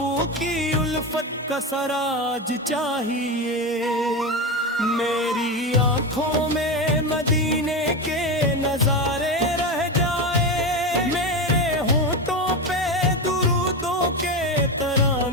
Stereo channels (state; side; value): normal; both; correlation 0.18